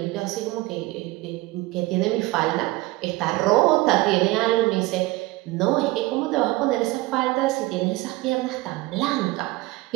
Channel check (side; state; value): left; quieter; 20.3 dB